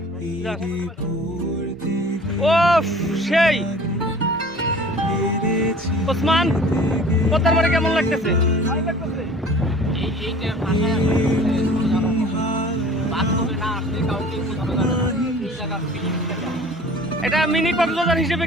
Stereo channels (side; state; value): both; normal; correlation 0.46